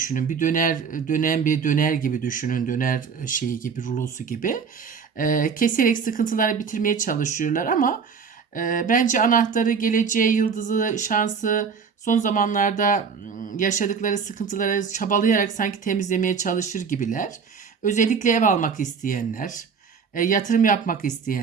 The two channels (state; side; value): quieter; left; 6.0 dB